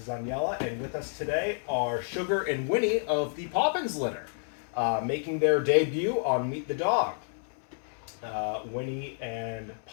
is Aniela, and with us today are Sugar and Winnie of the Poppins litter, making their debut on Meet the Dog. Winnie and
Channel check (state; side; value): silent; right; 58 dB below the other